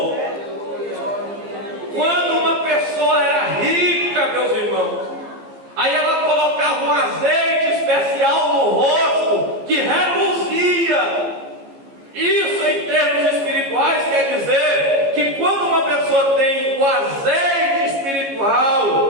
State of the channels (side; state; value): left; late; 15 ms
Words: Quando uma pessoa era rica, meus irmãos, aí ela colocava um azeite especial no rosto que reluzia. Isso, em termos espirituais, quer dizer que quando uma pessoa tem o azeite